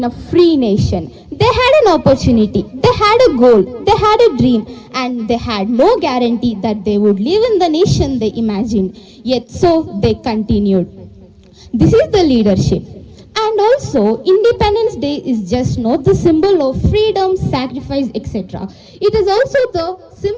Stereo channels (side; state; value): both; identical; correlation 1.00